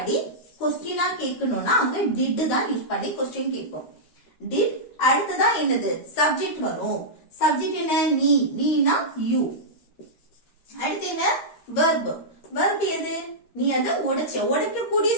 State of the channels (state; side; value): late; right; 13 ms